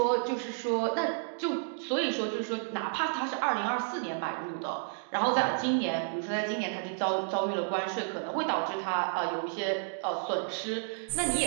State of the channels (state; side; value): silent; left; digital silence